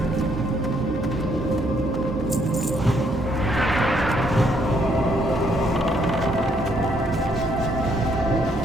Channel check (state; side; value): normal; both; correlation 0.70